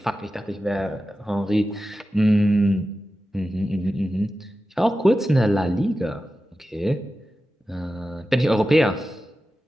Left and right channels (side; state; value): both; normal; correlation 0.93